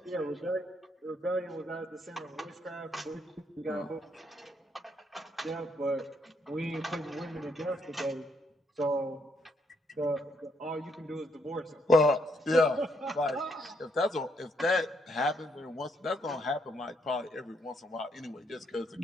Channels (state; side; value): normal; both; correlation 0.74